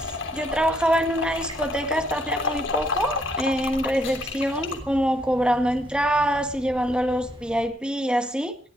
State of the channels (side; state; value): both; normal; correlation 0.71